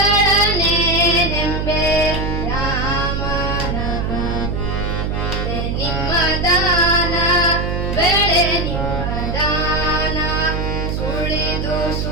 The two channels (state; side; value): noise; right; hum, 1 dB below the sound